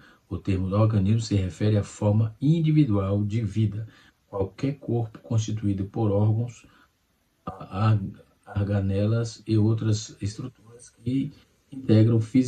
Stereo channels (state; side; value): identical; both; correlation 1.00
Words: o termo organismo se refere à forma individual de vida. Qualquer corpo constituído por órgãos, organelas e outras estruturas que integram